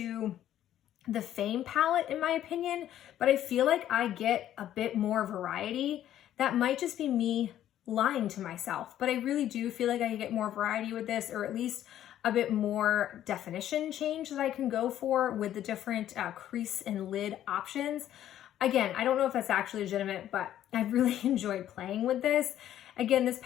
the Fame palette in my opinion, but I feel like I get a bit more variety. That might just be me lying to myself, but I really do feel like I get more variety with this, or at least a bit more definition change that I can go for with the different crease and lid options. Again, I don't know if that's actually legitimate, but I really enjoyed playing with this. Again, this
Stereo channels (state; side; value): quieter; right; 11.7 dB